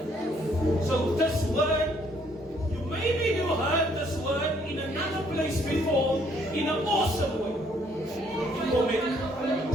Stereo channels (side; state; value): both; normal; correlation 0.66